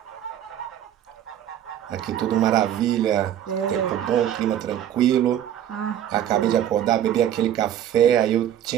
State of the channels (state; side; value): quieter; left; 10.8 dB